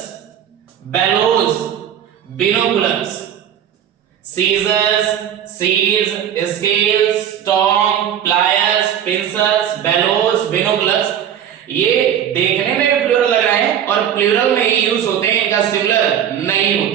bellows, binoculars. Scissors, सीज, scales, tong, pliers, pincers, bellows, binoculars, ये देखने में भी प्लूरल लग रहे हैं और प्लूरल में ही यूज होते हैं, इनका सिंगुलर नहीं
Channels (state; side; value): quieter; left; 9.6 dB